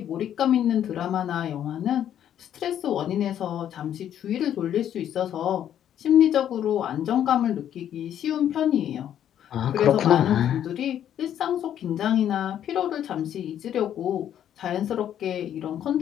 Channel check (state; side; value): quieter; right; 10.3 dB